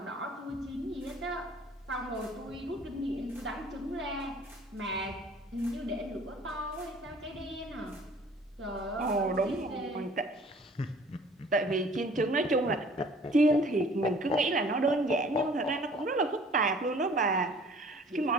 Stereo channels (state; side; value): normal; both; correlation 0.52